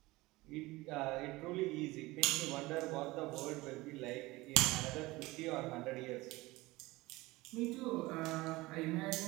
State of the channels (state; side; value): quieter; left; 20.7 dB